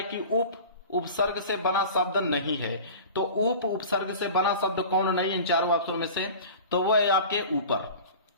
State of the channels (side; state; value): both; inverted; correlation -0.38